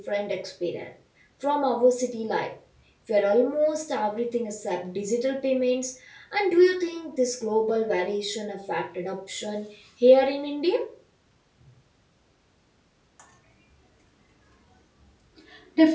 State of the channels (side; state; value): both; identical; correlation 1.00